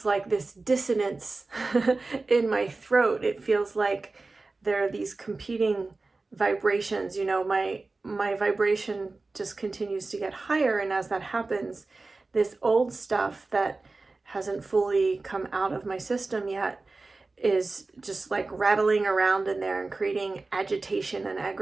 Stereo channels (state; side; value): quieter; left; 3.5 dB